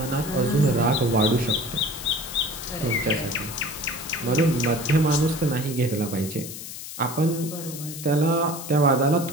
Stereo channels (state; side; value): noise; left; hiss, 10 dB below the sound